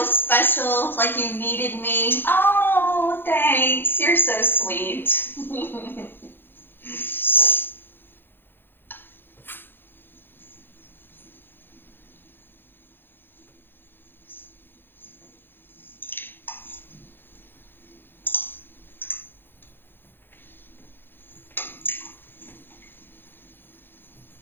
special, like you needed me? Oh, thanks. You're so sweet.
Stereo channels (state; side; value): late; right; 0.10 ms